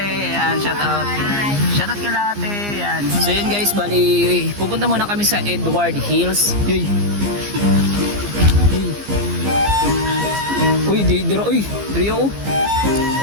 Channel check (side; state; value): left; late; 15 ms